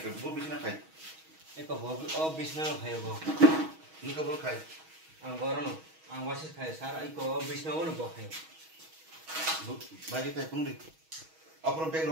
Bo bisna khai. Eko bo bisna khai bo. Ni ka bo khai. Ang baron, ang wasis khai. Sara eko bisna bo bo khai. Bo bagi kai turun di. Apron bag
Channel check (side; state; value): left; late; 6.3 ms